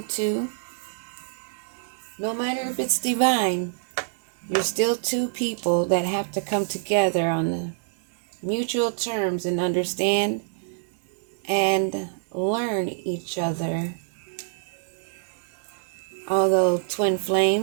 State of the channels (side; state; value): left; silent; digital silence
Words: No matter if it's divine, you're still two people that have to come together on the mutual terms and understand and learn each other. Although twin